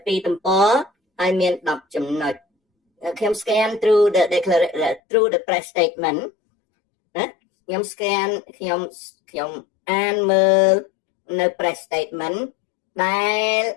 2ទំព័រហើយមាន10ចំណុចខ្ញុំ scan through the through the press statement ណាខ្ញុំ scan ខ្ញុំអានមើលនៅ press statement ដែល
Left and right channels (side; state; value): right; drops out; at 5.0 s